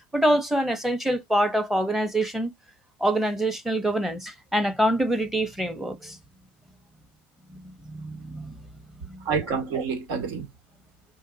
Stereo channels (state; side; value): normal; both; correlation 0.76